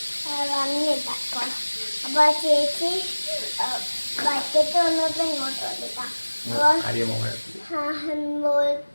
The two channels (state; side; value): inverted; both; correlation -1.00